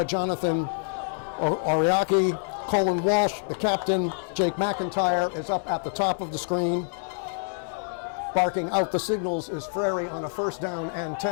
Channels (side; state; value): right; silent; 60 dB below the other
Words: Jonathan Ariaki, Colin Walsh. The captain, Jake McIntyre, is up at the top of the screen. Barking out the signals is Frary on a 1st down and